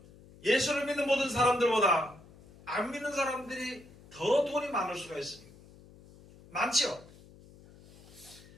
예수를 믿는 모든 사람들보다 안 믿는 사람들이 더 돈이 많을 수가 있습니다. 많죠?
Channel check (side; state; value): left; noise; hum, 22 dB below the sound